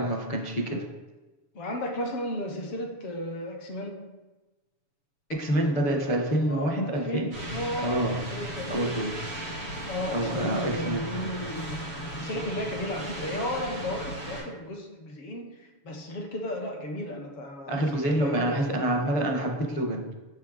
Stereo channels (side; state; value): right; late; 7.0 ms